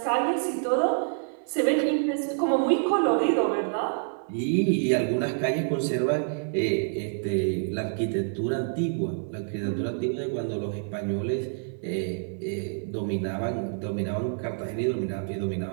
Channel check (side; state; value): left; silent; 60 dB below the other